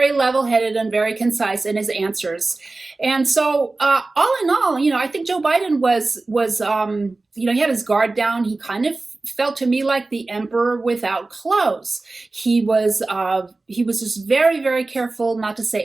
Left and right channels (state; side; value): quieter; left; 3.3 dB